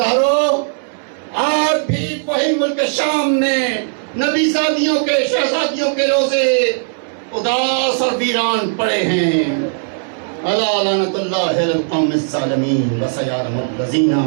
آج بھی وہی ملک شام میں نبی زادیوں کے، شہزادیوں کے روزے اداس اور ویران پڑے ہیں۔ الا لعنت اللہ علی القوم الظالمین وسیعلم الذین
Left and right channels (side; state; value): left; silent; digital silence